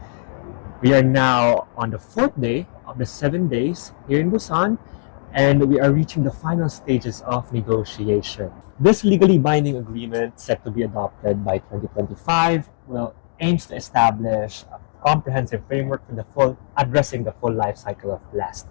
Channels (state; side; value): silent; right; digital silence